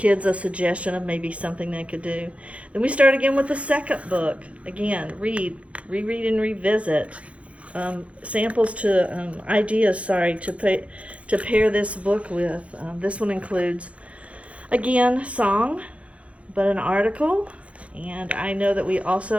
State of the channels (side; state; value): left; late; 0.063 ms